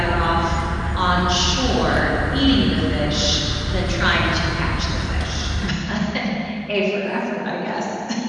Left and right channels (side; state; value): both; identical; correlation 1.00